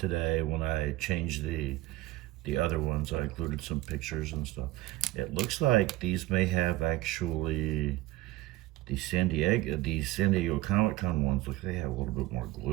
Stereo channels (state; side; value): quieter; left; 17.7 dB